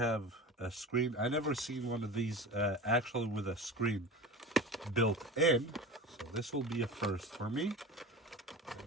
a screen. I never seen one of these actually with a screen built in. So this will be a first for me.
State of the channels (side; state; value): both; normal; correlation 0.32